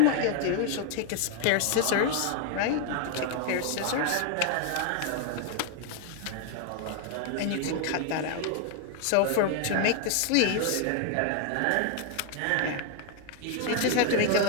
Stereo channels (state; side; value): different; both; correlation 0.00